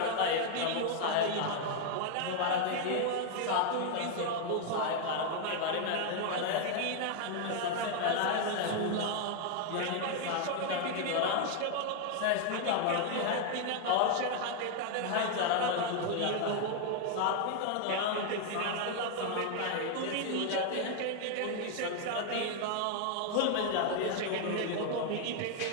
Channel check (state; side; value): different; both; correlation 0.01